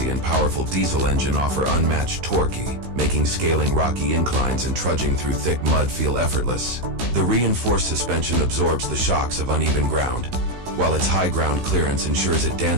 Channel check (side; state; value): left; late; 16 ms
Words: and powerful diesel engine offer unmatched torque, making scaling rocky inclines and trudging through thick mud feel effortless. The reinforced suspension absorbs the shocks of uneven ground, while its high ground clearance ensures it